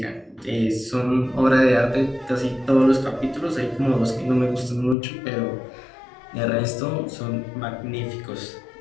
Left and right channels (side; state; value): right; drops out; at 5.0 s